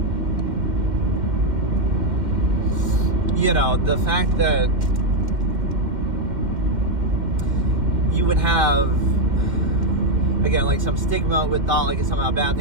the fact that you would have, again, like some stigma with thought like it's somehow a bad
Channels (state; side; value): late; left; 2.1 ms